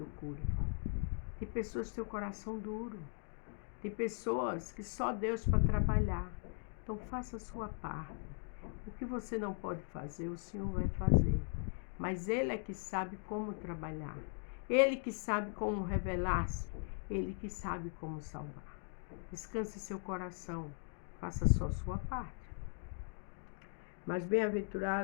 cure. Tem pessoas que têm o coração duro. Tem pessoas que só Deus para trabalhar. Então faça a sua parte. O que você não pode fazer, o Senhor vai fazer. Mas Ele é que sabe como trabalhar. Ele que sabe como revelar-se. Ele que sabe como salvar. Descanse seu coração. Faça só a sua parte. Mas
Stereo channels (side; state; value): right; silent; 52 dB below the other